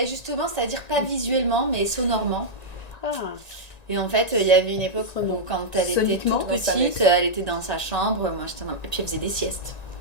justement, c'est-à-dire pas visuellement, mais sonorement. Ah. Et en fait, il y avait une époque où quand elle était Soniquement, toute dans sa petite, elle était dans sa chambre, moi j'étais et puis elle faisait des siestes.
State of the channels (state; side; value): late; right; 1.9 ms